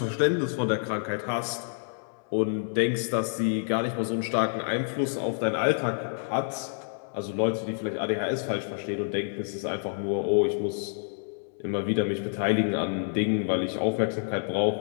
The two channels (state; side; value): silent; right; digital silence